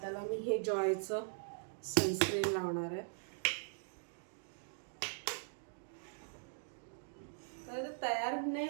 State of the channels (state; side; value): silent; left; digital silence